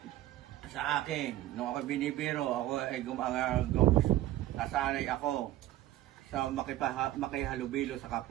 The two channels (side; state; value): left; quieter; 14.6 dB